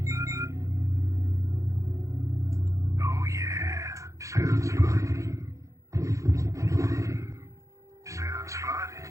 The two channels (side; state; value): left; late; 0.15 ms